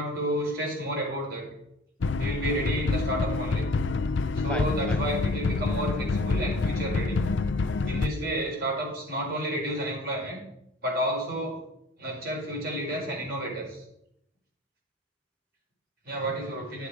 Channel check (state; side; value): normal; both; correlation 0.47